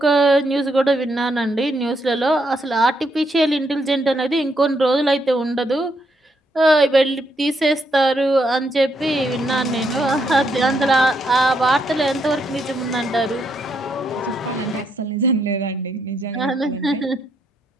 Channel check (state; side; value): normal; both; correlation 0.77